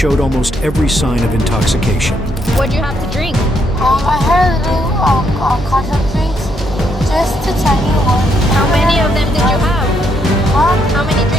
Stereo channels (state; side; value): normal; both; correlation 0.75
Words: almost every sign of intoxication. What'd you have to drink? I had a little contact drinks, just a tiny one. How many of them did you have? How many